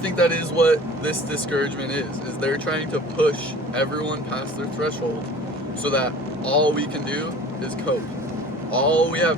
that is what this discouragement is they're trying to push everyone past their threshold so that all we can do is cope. All we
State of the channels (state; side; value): normal; both; correlation 0.44